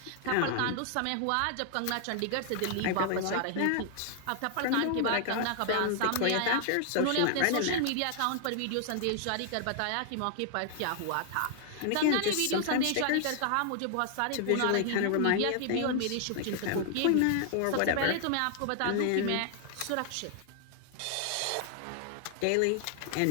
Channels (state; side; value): different; both; correlation 0.00